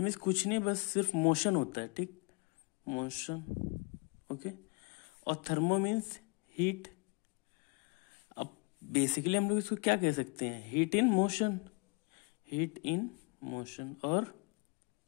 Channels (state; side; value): quieter; right; 30.6 dB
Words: कुछ नहीं, बस सिर्फ मोशन होता है। ठीक, मोशन। ओके, और थर्मो मीन्स हीट। अब बेसिकली हम लोग इसको क्या कह सकते हैं? Heat in motion. Heat in motion और